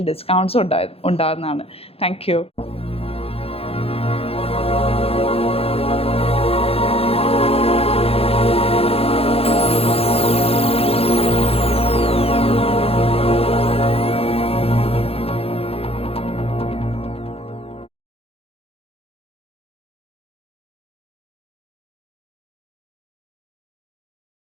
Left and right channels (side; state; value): right; late; 0.28 ms